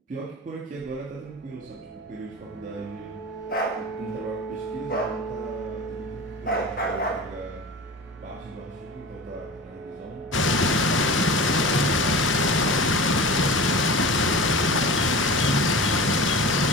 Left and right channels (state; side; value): normal; both; correlation 0.33